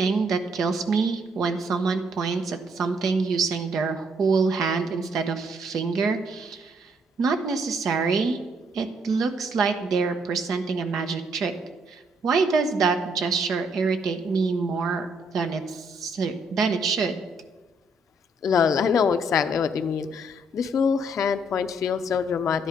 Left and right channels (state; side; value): normal; both; correlation 0.70